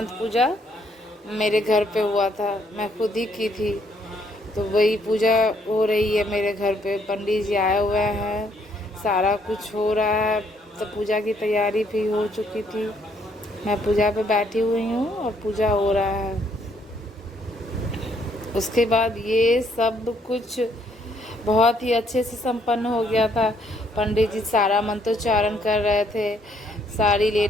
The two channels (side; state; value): both; normal; correlation 0.69